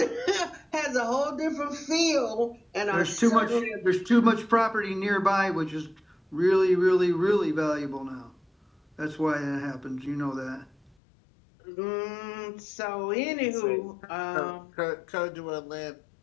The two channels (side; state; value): right; drops out; at 10.9 s